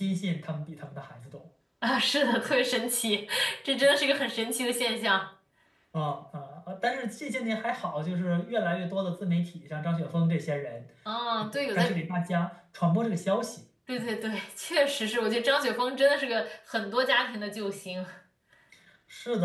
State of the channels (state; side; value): identical; both; correlation 1.00